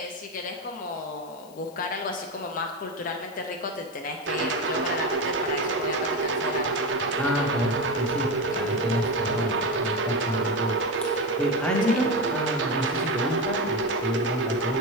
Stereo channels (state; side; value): noise; left; hiss, 24 dB below the sound